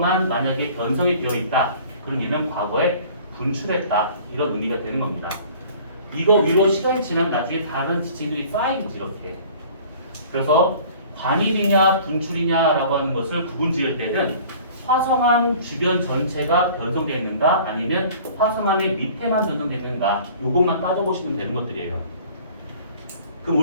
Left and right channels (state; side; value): inverted; both; correlation -0.48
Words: 만약에 변성이 되어 있다, 그럼 얘는 과거에 분출했다 이런 의미가 되는 겁니다. 이거 위로 시간이 지나면 나중에 다른 지층들이 쌓이지 이렇게. 그래서 관입이냐 분출이냐라고 하는 것을 구분 지을 때는 화성암 주변 전체가 변성되어 있는가 아니면 화성암의 밑에만 변성되어 있는가 요것만 따져보시면 되는 것들이에요. 그럼